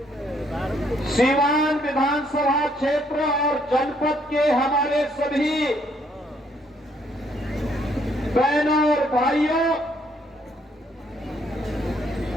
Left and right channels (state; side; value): normal; both; correlation 0.68